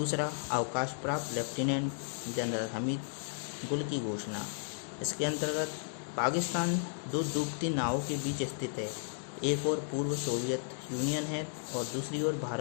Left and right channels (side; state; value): right; silent; digital silence